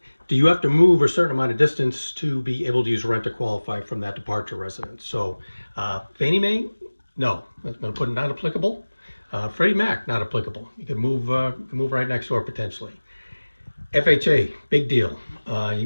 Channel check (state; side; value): inverted; both; correlation -1.00